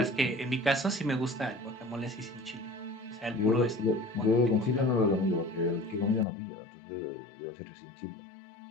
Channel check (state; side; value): drops out; right; at 6.2 s